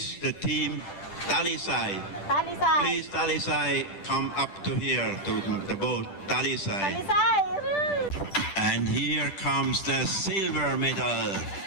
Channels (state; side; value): late; right; 10 ms